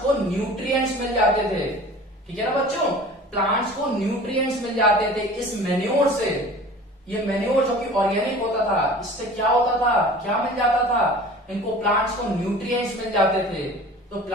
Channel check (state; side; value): normal; both; correlation 0.42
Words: को न्यूट्रिएंट्स मिल जाते थे, ठीक है ना बच्चों, प्लांट्स को न्यूट्रिएंट्स मिल जाते थे इस मैन्योर से। ये मैन्योर जो कि ऑर्गेनिक होता था, इससे क्या होता था, क्या मिल जाता था, इनको प्लांट्स को न्यूट्रिएंट्स मिल जाते थे। तो